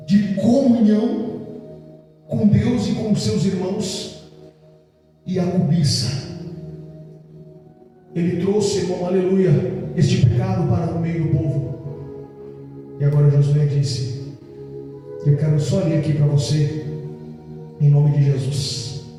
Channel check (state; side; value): identical; both; correlation 1.00